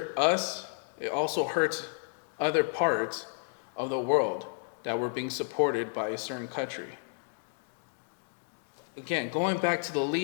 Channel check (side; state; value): right; silent; digital silence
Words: us, it also hurts other parts of the world that were being supported by a certain country. Again, going back to the